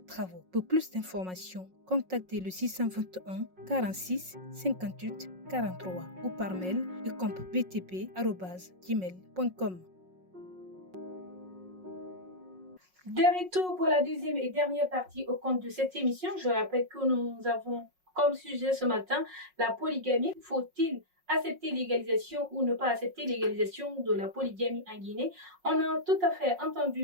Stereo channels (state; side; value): late; left; 5.5 ms